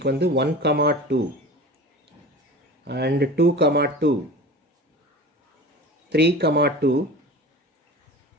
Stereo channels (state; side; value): normal; both; correlation 0.36